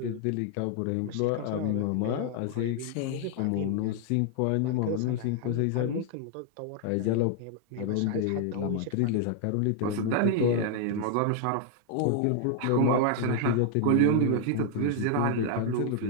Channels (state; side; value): different; both; correlation 0.00